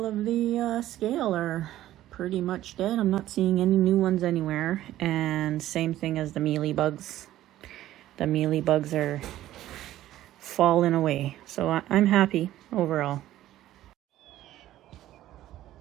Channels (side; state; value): left; quieter; 13.9 dB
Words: of the scale are pretty much dead. I'm not seeing any new ones anywhere. And same thing as the mealybugs. The mealybugs are falling away. So I'm happy overall.